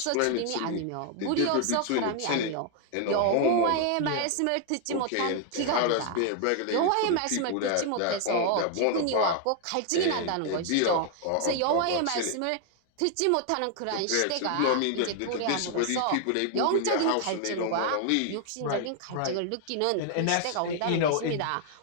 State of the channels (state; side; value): different; both; correlation 0.00